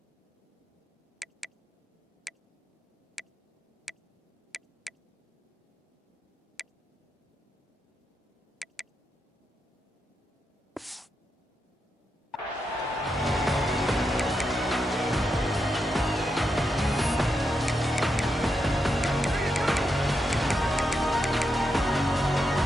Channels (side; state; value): both; normal; correlation 0.84